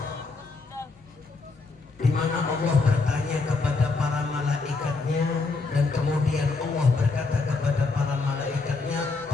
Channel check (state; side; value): quieter; right; 3.9 dB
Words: di mana Allah bertanya kepada para malaikatnya, dan kemudian Allah berkata kepada para malaikatnya,